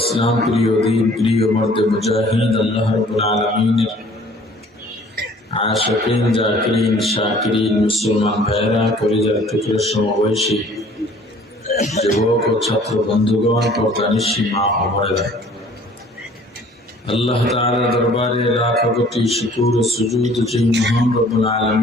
প্রিয় দিন প্রিয় মর্দে মুজাহিদ আল্লাহ রাব্বুল আলামিনের আশিকিন জাকিরিন শাকিরিন মুসলমান ভাইরা কলিজার টুকরো সমবয়সী যুবক ও ছাত্র বন্ধুগণ পর্দানিশী মা ও বোনেরা, আল্লাহ তাআলার দরবারে লাখ কোটি শুকর ও সুজুদ যে মহান রব্বুল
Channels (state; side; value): normal; both; correlation 0.53